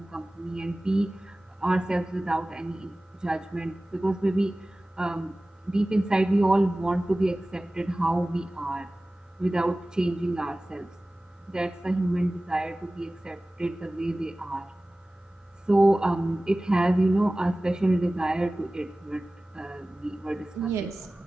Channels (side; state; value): both; normal; correlation 0.97